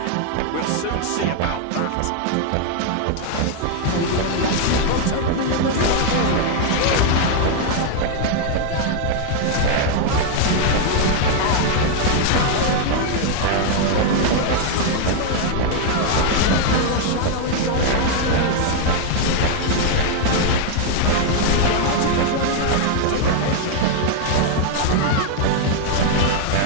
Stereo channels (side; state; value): both; different; correlation 0.00